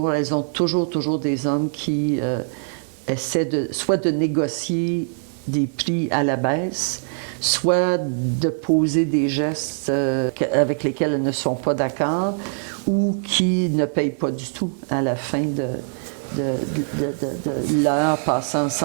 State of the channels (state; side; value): silent; left; 56 dB below the other